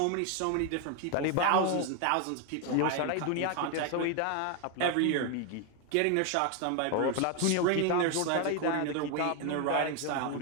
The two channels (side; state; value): both; different; correlation 0.01